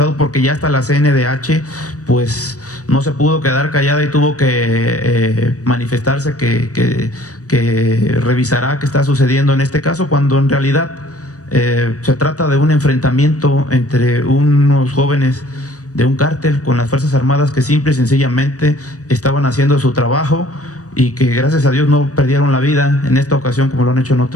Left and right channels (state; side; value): late; right; 0.66 ms